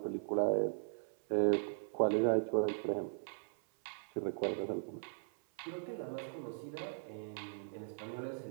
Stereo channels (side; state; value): left; silent; 52 dB below the other